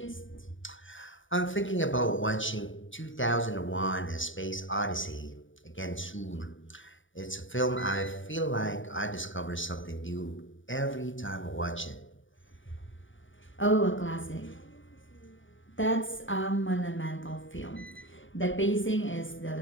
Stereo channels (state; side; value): late; right; 0.56 ms